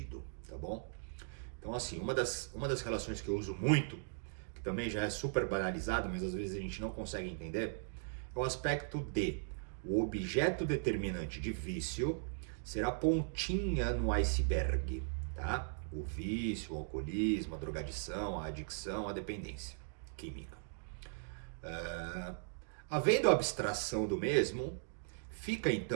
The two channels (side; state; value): left; silent; digital silence